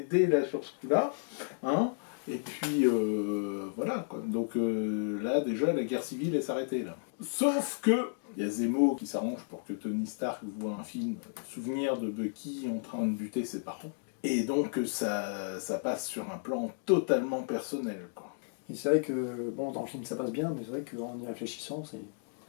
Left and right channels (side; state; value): right; silent; digital silence